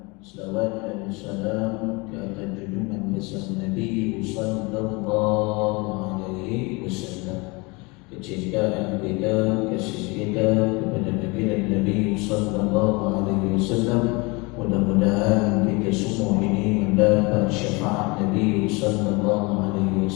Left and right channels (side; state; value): right; quieter; 26.8 dB